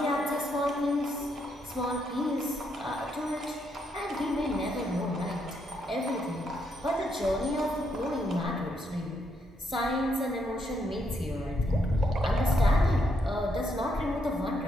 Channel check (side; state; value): both; normal; correlation 0.76